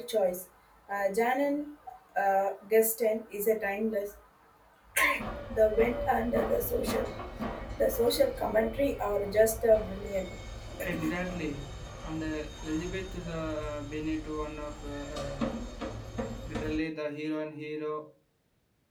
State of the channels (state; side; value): identical; both; correlation 1.00